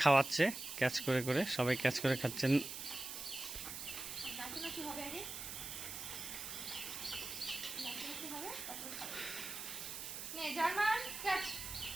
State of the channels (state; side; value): noise; right; hiss, 7 dB below the sound